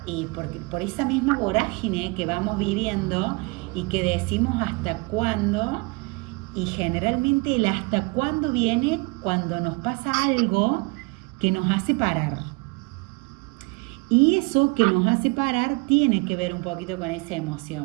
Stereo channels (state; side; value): quieter; left; 27.9 dB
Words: y por esa misma vorágine que vamos viviendo y que decimos hasta cuándo, y generalmente el hasta cuándo viene cuando nos pasa algo que nos hace parar. Y eso que nos hace parar tiene que ver un poquito con esa